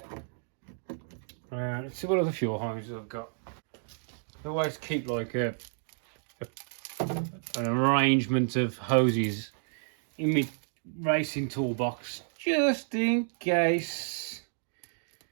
Let's see what other fuel hoses I've got. I always keep like an arrangement of hoses in my racing toolbox, just in case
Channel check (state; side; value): silent; left; digital silence